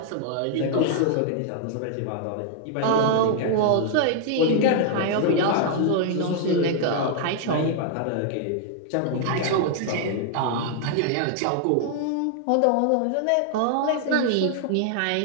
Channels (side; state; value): both; different; correlation 0.00